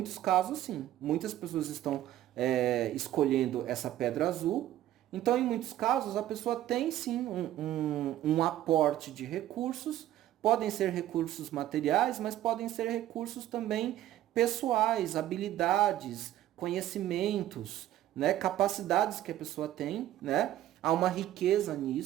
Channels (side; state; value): left; quieter; 13.1 dB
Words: casos sim. Muitas pessoas estão escolhendo essa pedra azul. Então, em muitos casos, a pessoa tem sim um aporte de recursos. Podem ser recursos materiais, mas podem ser recursos também pessoais, habilidades, conhecimentos, né, capacidades que a pessoa tem, né? Há uma riqueza